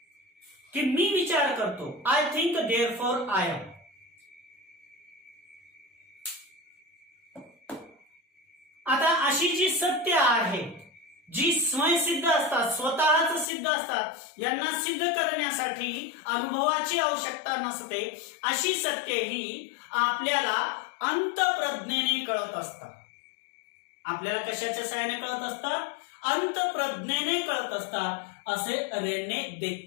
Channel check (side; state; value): right; drops out; at 13.5 s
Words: की मी विचार करतो, I think therefore I am. आता अशी जी सत्य आहे जी स्वयंसिद्ध असतात, स्वतःच सिद्ध असतात, यांना सिद्ध करण्यासाठी अनुभवाची आवश्यकता नसते, अशी सत्य ही आपल्याला अंतःप्रज्ञेने कळत असतात. आपल्याला कशाच्या सहाय्याने कळत असतात? अंतःप्रज्ञेने कळत असतात, असे रेने